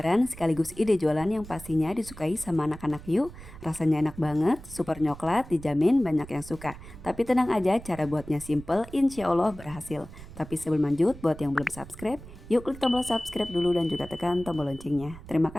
sekaligus ide jualan yang pastinya disukai sama anak-anak yuk. Rasanya enak banget, super coklat, dijamin banyak yang suka. Tapi tenang aja, cara buatnya simple, insya Allah berhasil. Tapi sebelum lanjut, buat yang belum subscribe, yuk klik tombol subscribe dulu dan juga tekan tombol loncengnya. Terima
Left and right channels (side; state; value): right; noise; rumble, 16 dB below the sound